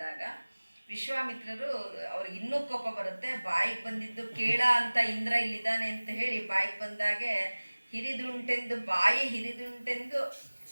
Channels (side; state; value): both; inverted; correlation -1.00